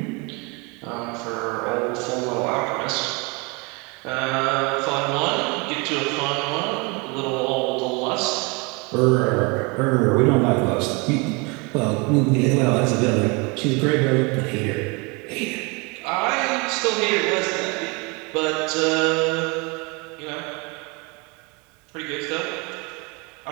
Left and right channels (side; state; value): left; quieter; 29.3 dB